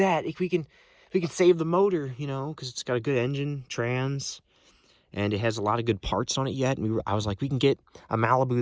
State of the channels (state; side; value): identical; both; correlation 1.00